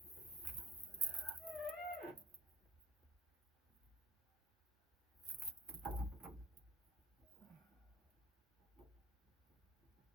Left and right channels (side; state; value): both; normal; correlation 0.46